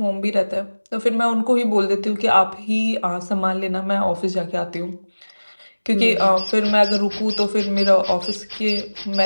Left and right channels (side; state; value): both; inverted; correlation -1.00